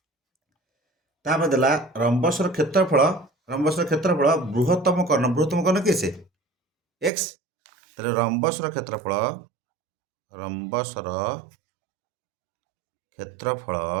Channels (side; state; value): left; drops out; at 7.1 s